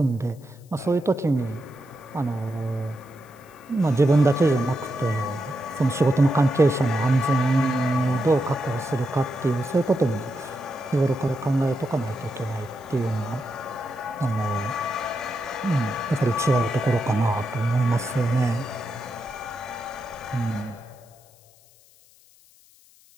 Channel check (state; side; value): noise; left; hiss, 28 dB below the sound